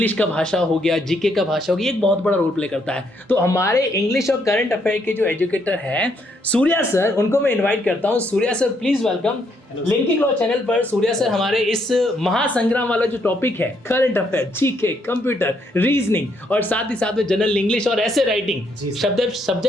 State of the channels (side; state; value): both; normal; correlation 0.73